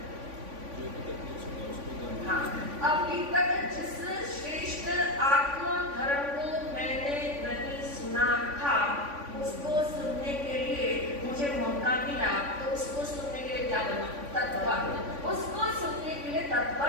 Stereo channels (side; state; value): left; late; 3.5 ms